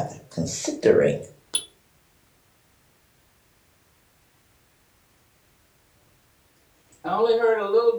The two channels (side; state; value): both; identical; correlation 1.00